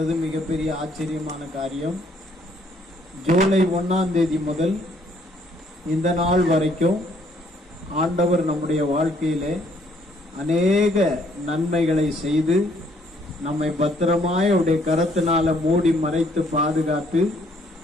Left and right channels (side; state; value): both; normal; correlation 0.66